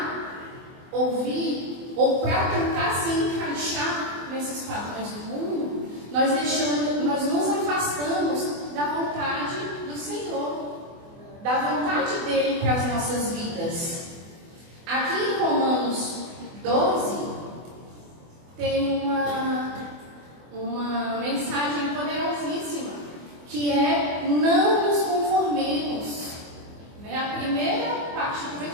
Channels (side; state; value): left; late; 24 ms